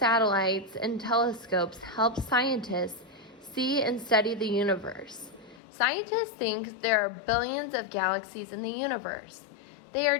and telescopes help scientists see and study the universe. Scientists think there are billions of galaxies in the universe. They are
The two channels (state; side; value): drops out; right; at 5.6 s